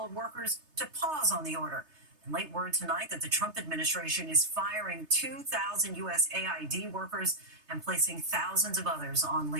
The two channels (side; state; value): left; late; 3.3 ms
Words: workers to pause on the order. And late word tonight that the Trump administration is firing 2,000 USAID workers and placing thousands of others on